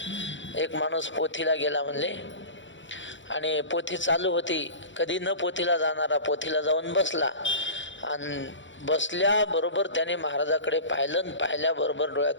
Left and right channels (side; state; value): right; late; 0.54 ms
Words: एक माणूस पोथीला गेला म्हणले, आणि पोथी चालू होती. कधी न पोथीला जाणारा पोथीला जाऊन बसला, आणि बसल्याबरोबर त्याने महाराजाकडे पाहिलं, आणि पाहिल्याबरोबर